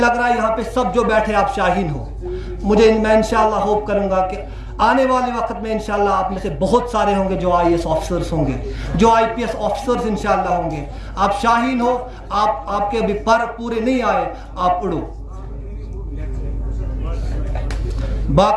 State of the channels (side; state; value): both; identical; correlation 1.00